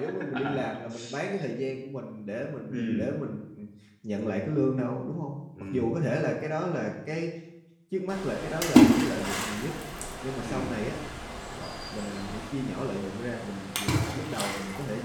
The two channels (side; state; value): both; identical; correlation 1.00